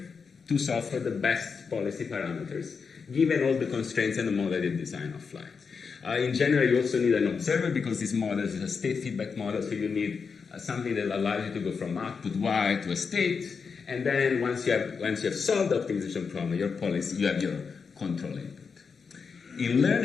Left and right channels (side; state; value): right; quieter; 5.5 dB